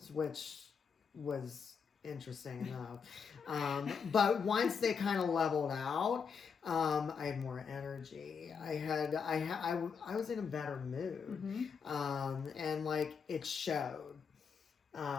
which was interesting enough. But once they kind of leveled out, I had more energy. I was in a better mood. And like it showed.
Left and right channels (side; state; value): right; quieter; 6.2 dB